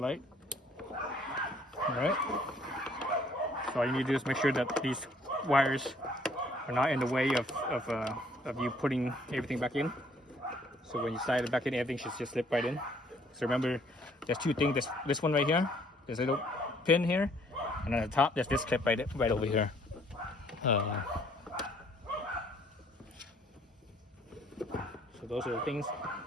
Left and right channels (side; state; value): both; normal; correlation 0.62